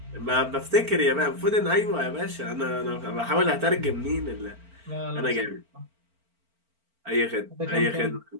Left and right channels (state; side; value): late; left; 4.4 ms